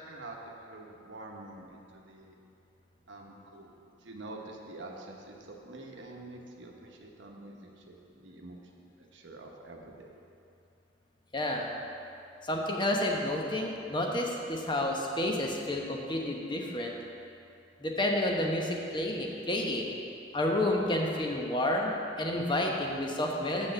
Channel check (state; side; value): normal; both; correlation 0.37